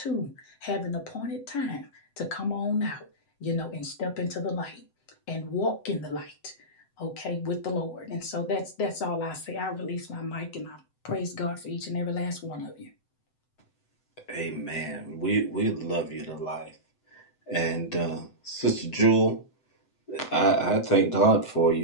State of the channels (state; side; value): late; right; 7.8 ms